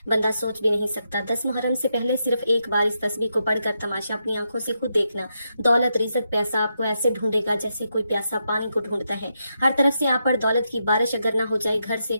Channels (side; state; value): both; inverted; correlation -0.84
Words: बंदा सोच भी नहीं सकता। 10 मुहर्रम से पहले सिर्फ एक बार इस तस्बीह को पढ़कर तमाशा अपनी आंखों से खुद देखना। दौलत रिज़्क पैसा आपको ऐसे ढूंढेगा जैसे कोई प्यासा पानी को ढूंढता है। हर तरफ से आप पर दौलत की बारिश अगर ना हो जाए, घर से